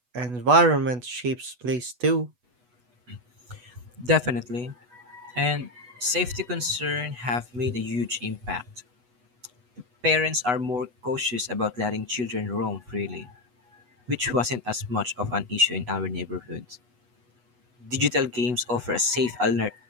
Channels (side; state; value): left; late; 8.2 ms